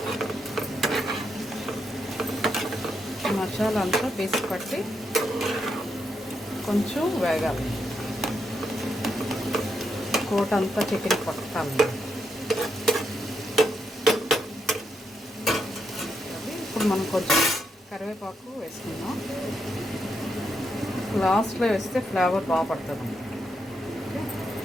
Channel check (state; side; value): normal; both; correlation 0.81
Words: మసాలా అంతా పీసి పట్టి కొంచెం వేగాలి. కోట అంతా చికెన్ పట్టాలి. ఇప్పుడు మనం కొంచెం కరివేపాకు వేసుకుందాం. లాస్ట్లో వేస్తే ఫ్లేవర్ బాగా పడుతుంది.